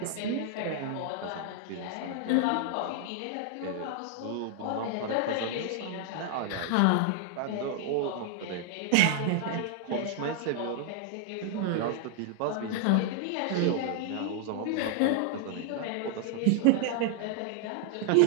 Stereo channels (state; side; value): different; both; correlation 0.00